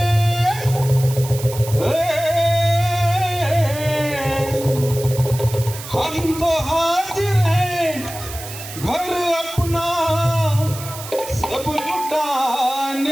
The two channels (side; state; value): right; noise; hiss, 12 dB below the sound